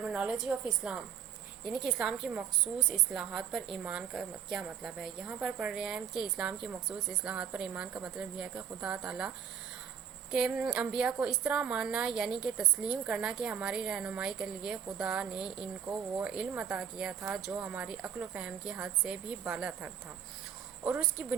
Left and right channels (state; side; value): quieter; left; 8.2 dB